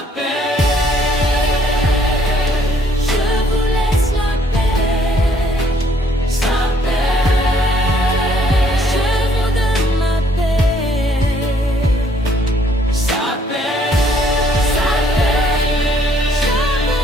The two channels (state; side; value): normal; both; correlation 0.65